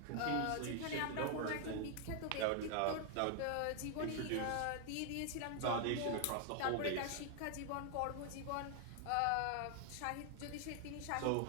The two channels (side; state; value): both; different; correlation 0.00